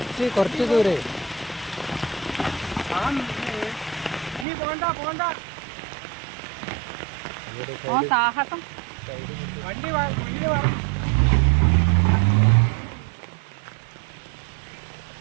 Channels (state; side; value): drops out; left; at 4.5 s